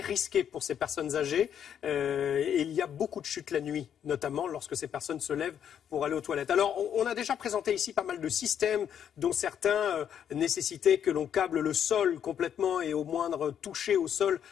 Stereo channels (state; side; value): quieter; right; 8.9 dB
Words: risqué pour ces personnes âgées. Et il y a beaucoup de chutes la nuit, notamment lorsque ces personnes se lèvent pour aller aux toilettes. Alors, on a déjà présenté ici pas mal de systèmes, dont certains nécessitaient que l'on câble le sol complètement et au moindre toucher au sol,